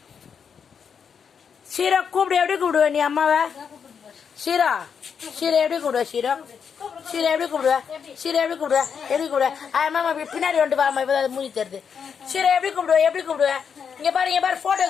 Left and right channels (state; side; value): quieter; right; 6.8 dB